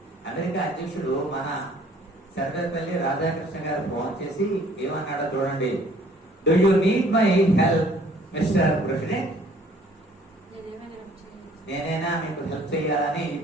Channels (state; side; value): normal; both; correlation 0.56